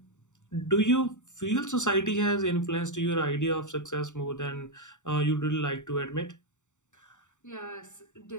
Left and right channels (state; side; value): late; right; 0.85 ms